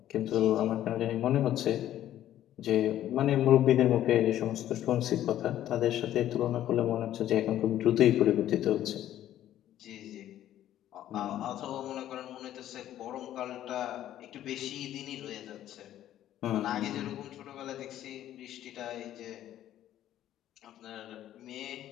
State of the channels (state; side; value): quieter; right; 12.3 dB